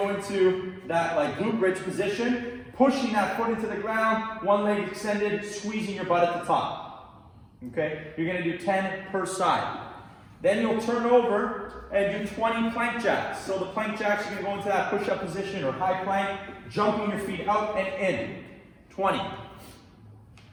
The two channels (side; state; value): both; identical; correlation 1.00